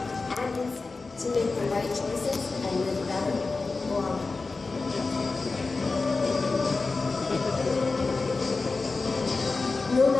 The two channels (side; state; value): right; quieter; 3.9 dB